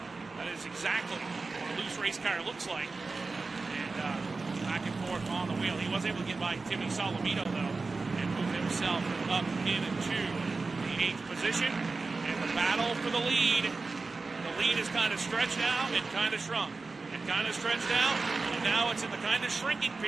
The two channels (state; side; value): quieter; left; 3.9 dB